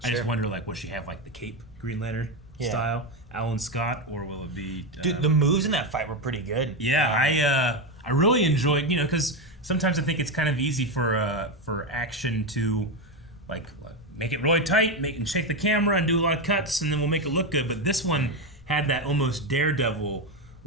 I just wonder, like, will she have like the cape Green Lantern style, Alan Scott, or will it be? Dude, the moves in that fight were pretty good. Yeah, I really enjoyed, because sometimes I think it's kind of easy for action to like make it really tight, and shake the camera and do a lot of cuts, and then we'll make it look good. But this one had that almost Daredevil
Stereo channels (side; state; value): both; normal; correlation 0.11